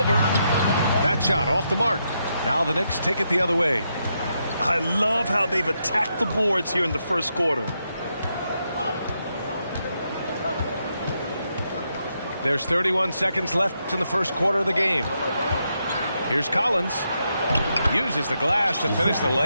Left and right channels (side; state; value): both; inverted; correlation -0.81